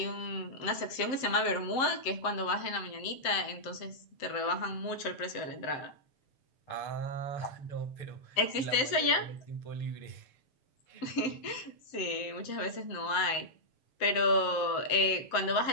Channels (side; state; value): right; late; 7.6 ms